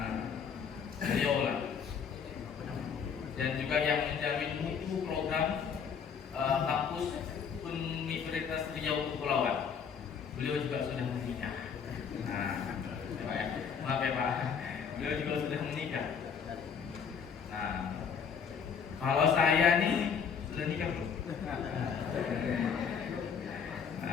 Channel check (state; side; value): quieter; right; 6.8 dB